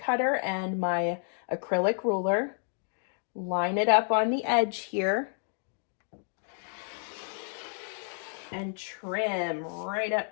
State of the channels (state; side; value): silent; right; 55 dB below the other